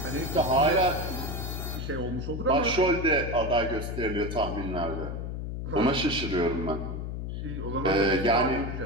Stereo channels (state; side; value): noise; left; hum, 5 dB below the sound